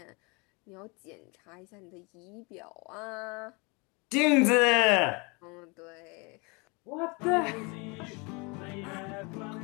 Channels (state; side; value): quieter; right; 29.4 dB